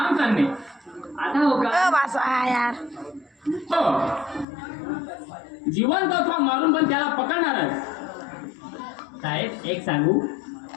चालणे. आता हो का? यार हो. जिवंत अथवा मारून पण त्याला पकडणारच. साहेब एक सांगू,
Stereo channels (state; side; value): drops out; right; at 4.5 s